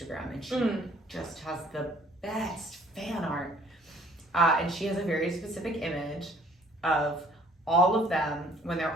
and she just has the best fan art. And she has a very specific image of all of them when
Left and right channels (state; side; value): normal; both; correlation 0.57